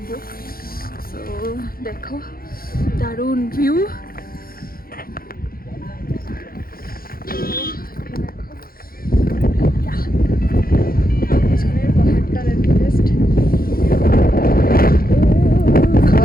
সো দেখো, দারুণ ভিউ। পাহাড়টা দেখো, জাস্ট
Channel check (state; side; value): late; right; 0.43 ms